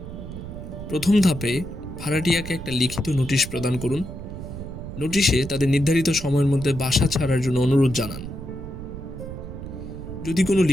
প্রথম ধাপে ভাড়াটিয়াকে একটা লিখিত নোটিশ প্রদান করুন। নোটিশে তাদের নির্ধারিত সময়ের মধ্যে বাসা ছাড়ার জন্য অনুরোধ জানান। যদি কোনো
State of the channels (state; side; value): noise; right; rumble, 10 dB below the sound